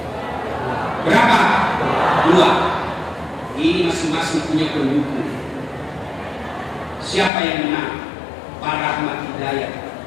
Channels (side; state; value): right; drops out; at 7.3 s